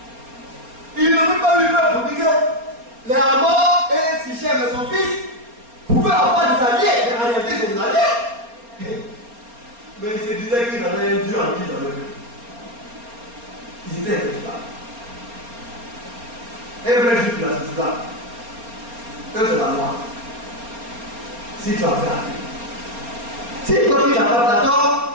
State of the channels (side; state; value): left; late; 4.3 ms